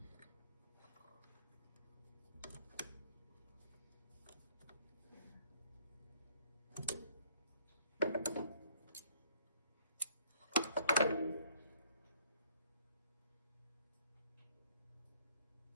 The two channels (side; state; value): both; inverted; correlation -0.63